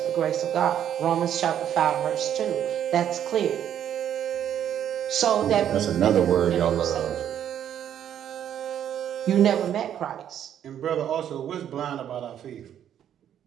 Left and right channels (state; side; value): quieter; left; 10.0 dB